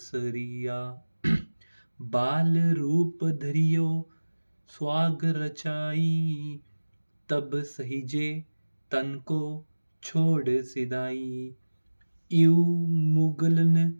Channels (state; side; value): inverted; both; correlation -1.00